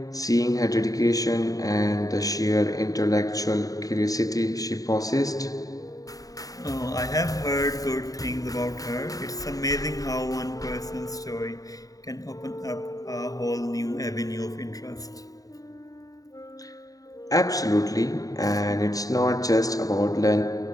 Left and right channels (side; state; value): right; late; 0.17 ms